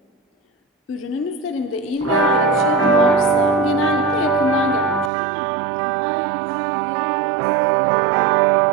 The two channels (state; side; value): drops out; left; at 5.1 s